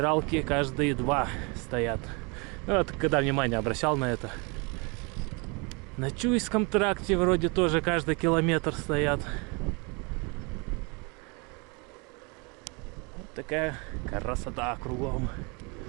каждые 2 стоят. Ну, вот когда внимание обращал на это. На Чуйском тракте вроде тоже каждый километр стоят. Вот такая красота кругом.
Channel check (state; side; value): quieter; left; 30.4 dB